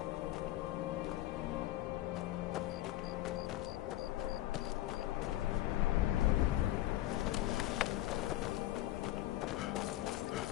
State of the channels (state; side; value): quieter; right; 15.3 dB